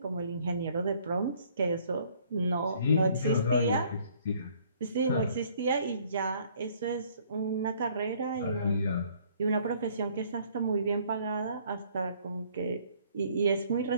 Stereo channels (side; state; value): both; inverted; correlation -0.60